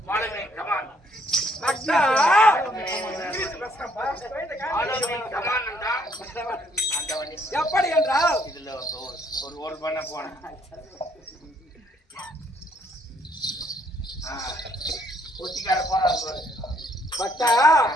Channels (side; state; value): both; normal; correlation 0.67